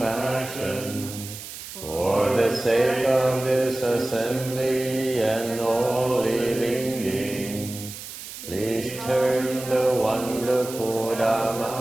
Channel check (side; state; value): right; noise; hiss, 12 dB below the sound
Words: for the sake of this assembly and all living beings, please turn the wonderful